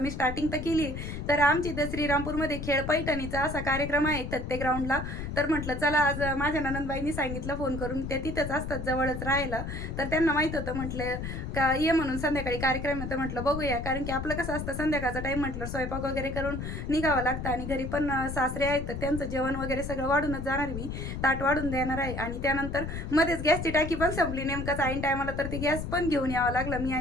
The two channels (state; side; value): noise; left; rumble, 6 dB below the sound